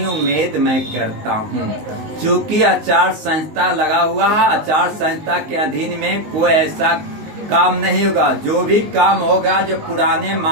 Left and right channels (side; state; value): left; late; 19 ms